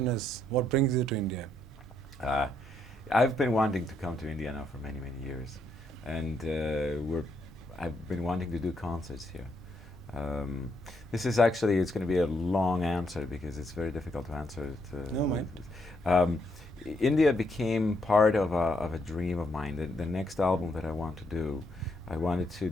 is, what brings you to India? Uh, I've been wanting to come to India now for many, many years, and I've been wanting to do concerts here. Um, this is actually, it's going to be a long answer because it's very difficult to answer it. No, mate. Um, India became part of a dream of mine. The next album that I want to do, I wanted to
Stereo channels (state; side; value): normal; both; correlation 0.75